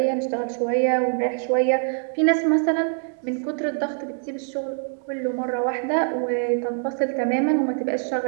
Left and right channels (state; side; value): silent; left; 57 dB below the other